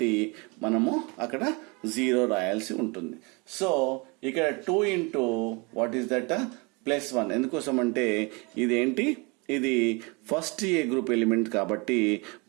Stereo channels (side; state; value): left; quieter; 29.2 dB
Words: మనము అక్కడ 0 రాయాల్సి ఉంటుంది. సో ఇక్కడ 2 ఇంటూ వాట్ ఈస్ దట్ +1. ఎందుకోసం అంటే ఇదేంటి? ఇది ఫస్ట్ ఏ గ్రూప్ ఎలిమెంట్ కాబట్టి